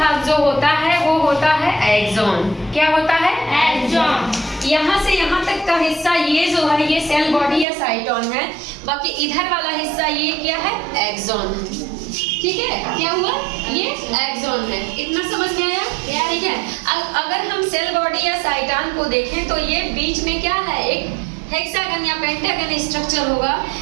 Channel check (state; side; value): drops out; left; at 7.7 s